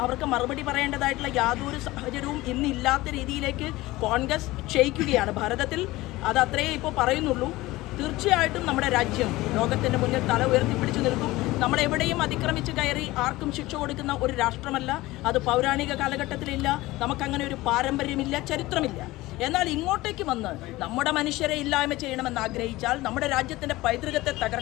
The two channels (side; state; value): right; quieter; 18.9 dB